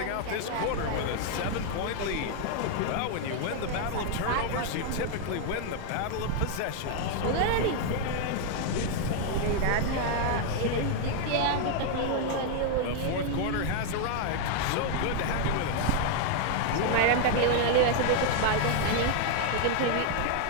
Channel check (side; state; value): both; different; correlation 0.00